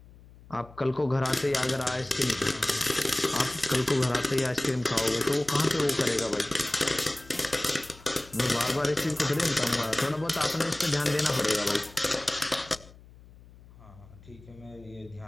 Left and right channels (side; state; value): left; noise; hum, 22 dB below the sound